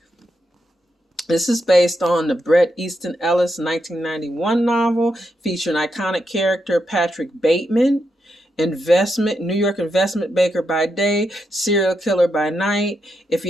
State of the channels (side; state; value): both; normal; correlation 0.83